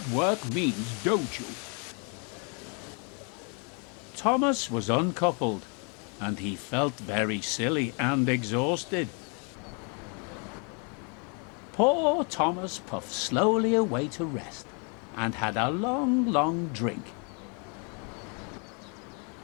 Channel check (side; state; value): right; quieter; 36.9 dB